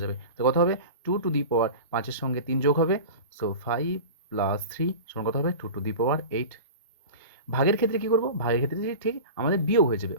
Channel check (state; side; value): inverted; both; correlation -0.33